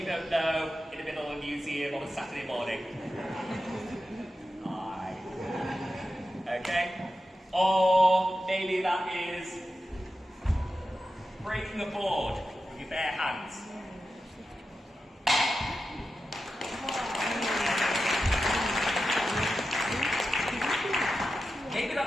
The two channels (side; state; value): both; normal; correlation 0.91